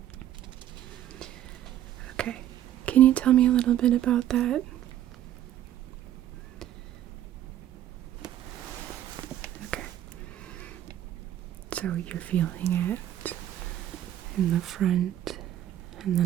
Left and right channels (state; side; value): quieter; left; 11.9 dB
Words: Okay. Can you tell me a little bit about that? Okay. So you're feeling it in the front and